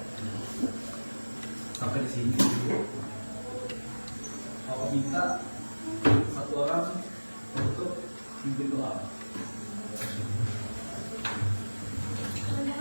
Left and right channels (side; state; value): both; inverted; correlation -1.00